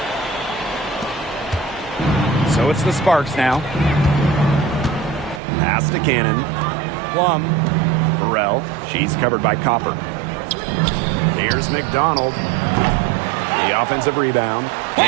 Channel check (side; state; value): left; drops out; at 5.4 s